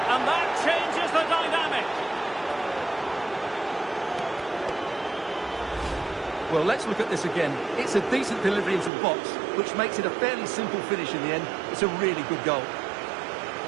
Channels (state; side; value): drops out; left; at 8.9 s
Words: and that changes the dynamic. Well, let's look at this again. It's a decent delivery into the box, which makes it a fairly simple finish in the end. It's a really good goal.